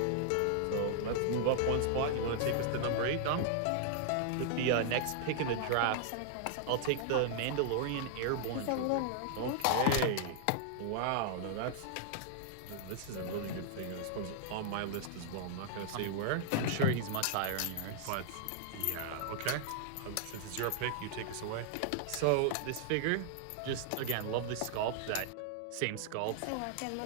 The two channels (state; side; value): different; both; correlation -0.01